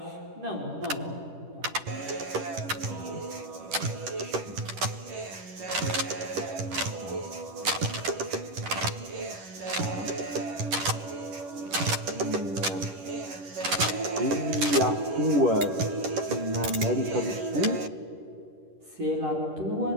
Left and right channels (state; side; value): late; left; 10 ms